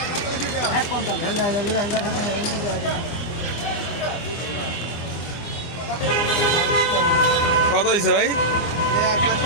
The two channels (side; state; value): right; late; 24 ms